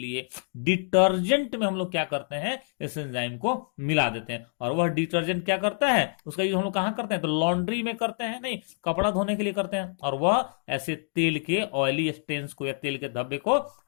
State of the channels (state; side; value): silent; right; digital silence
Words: डिटर्जेंट में हम लोग क्या करते हैं, इस एंजाइम को मिला देते हैं। और वह डिटर्जेंट क्या करता है, उसका यूज हम लोग कहां करते हैं? तो लॉन्ड्री में करते हैं, नहीं, कपड़ा धोने के लिए करते हैं। और वह ऐसे तेल के ऑयली स्टेन्स को या तेल के धब्बे को